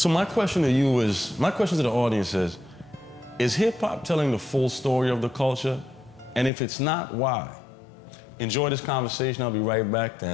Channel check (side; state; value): right; drops out; at 6.5 s